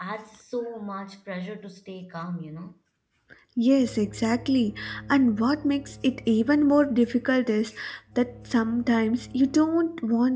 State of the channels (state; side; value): identical; both; correlation 1.00